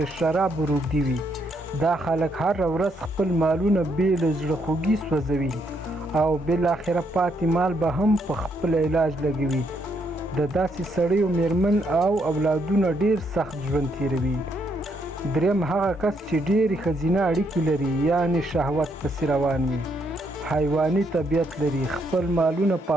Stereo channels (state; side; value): normal; both; correlation 0.74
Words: د شرابو روږدي وي. دا خلک هره ورځ خپل مالونه بې له زړه خوږي سوځوي او بالاخره پاتې مال به هم په خپل علاج لګوي. د داسې سړیو مېرمن او اولادونه ډېر سخت ژوند تیروي. دریم هغه کس چې ډېرې ښځینه اړیکې لري، یعنې شهوت پسې روان وي، حیواني طبیعت لري، خپل مالونه